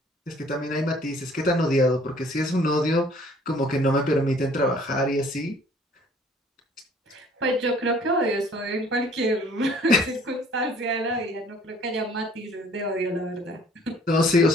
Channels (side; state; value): both; normal; correlation 0.56